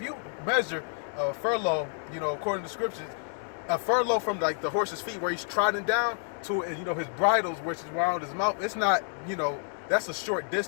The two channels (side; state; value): right; silent; 58 dB below the other